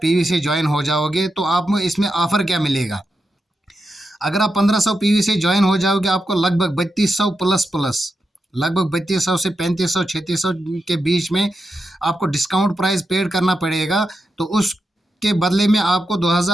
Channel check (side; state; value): both; normal; correlation 0.87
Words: से ज्वाइन हो जाओगे। तो आप इसमें ऑफ़र क्या मिलेगा? अगर आप 1500 पीवी से ज्वाइन हो जाओगे, आपको लगभग 3200 प्लस प्लस, लगभग 3200 से 3500 3600 के बीच में आपको डिस्काउंट प्राइस पेड करना पड़ेगा। तो उसके बदले में आपको